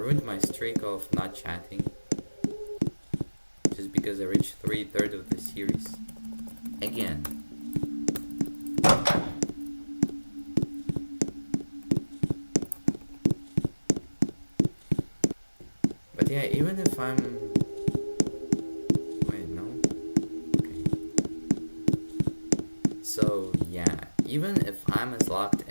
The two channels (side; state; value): both; inverted; correlation -1.00